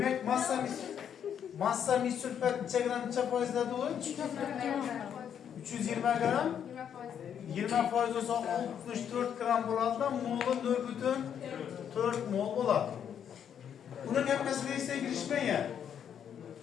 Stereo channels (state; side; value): quieter; right; 8.6 dB